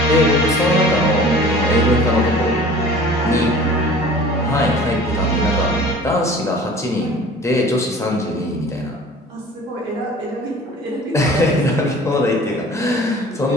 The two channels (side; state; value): both; normal; correlation 0.45